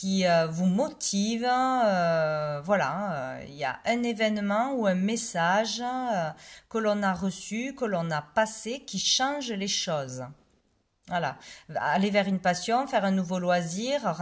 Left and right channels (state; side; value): identical; both; correlation 1.00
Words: motive. Voilà, il y a un événement ou un message que l'on a reçu, que l'on a passé, qui change les choses. Voilà, aller vers une passion, faire un nouveau loisir,